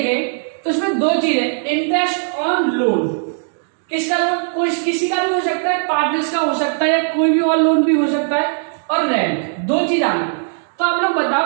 तो इसमें दो चीजें, इंटरेस्ट ऑन लोन, किसका लोन? कोई किसी का भी हो सकता है, पार्टनर्स का हो सकता है, या कोई भी और लोन भी हो सकता है, और रेंट, दो चीज आनी। तो आप लोग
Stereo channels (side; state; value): left; silent; digital silence